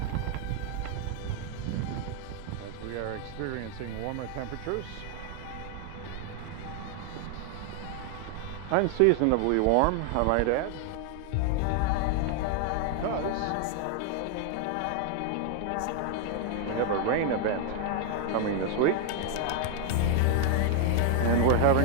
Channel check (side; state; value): both; different; correlation 0.00